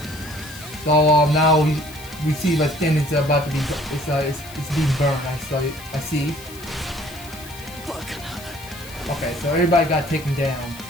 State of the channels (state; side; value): noise; left; hiss, 17 dB below the sound